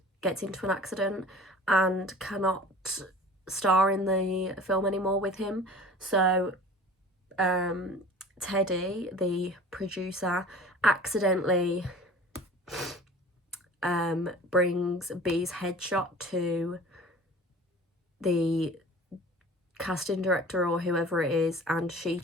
gets into an accident and cannot star in the film anymore with him. So Teddy, the producer, accidentally brings B's headshot to the casting director or whoever it is, and she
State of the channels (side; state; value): both; normal; correlation 0.43